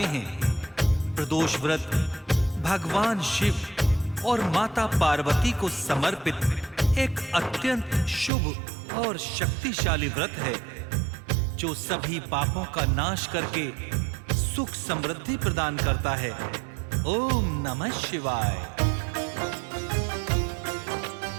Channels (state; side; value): drops out; left; at 8.3 s